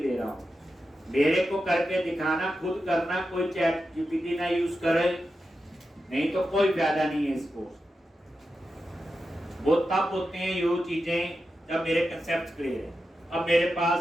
रहा हूं। मेरे को करके दिखाना, खुद करना, कोई चैट जीपीटी ना यूज करे, नहीं तो कोई फायदा नहीं है इसको। वो तब होते हैं ये चीजें जब मेरे कंसेप्ट क्लियर है। अब मेरे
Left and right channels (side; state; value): both; normal; correlation 0.90